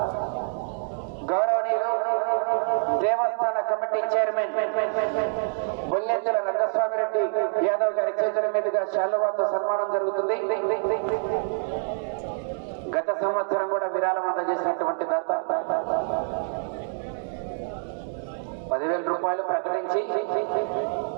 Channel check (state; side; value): silent; left; 61 dB below the other